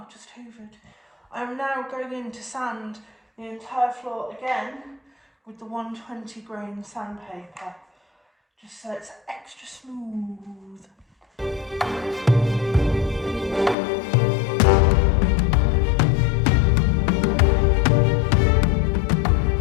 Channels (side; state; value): right; drops out; at 13.8 s